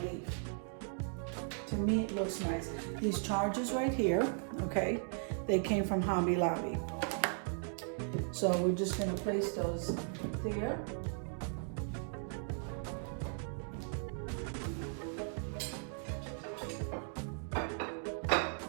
leaf. To me, it looks nice. These charges right here, okay, they came from Hobby Lobby. So we're just going to place those there.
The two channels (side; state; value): left; silent; 53 dB below the other